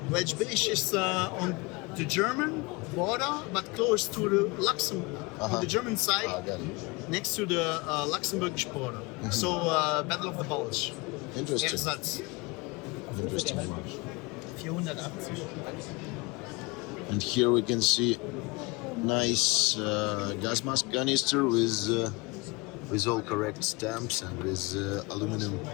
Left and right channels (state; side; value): quieter; right; 26.4 dB